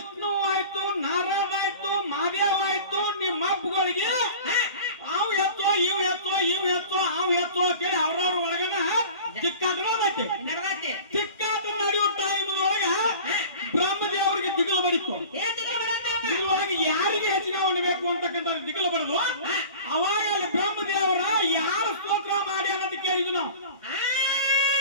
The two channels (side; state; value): both; inverted; correlation -0.40